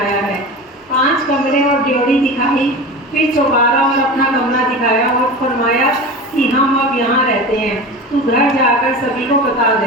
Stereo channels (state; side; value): normal; both; correlation 0.30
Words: है। 5 कमरे और ड्योढ़ी दिखाई, फिर चौबारा और अपना कमरा दिखाया और फरमाया कि हम अब यहाँ रहते हैं, तू घर जाकर सभी को बता